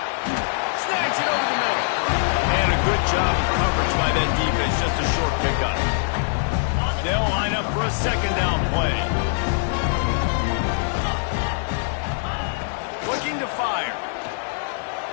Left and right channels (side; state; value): right; silent; digital silence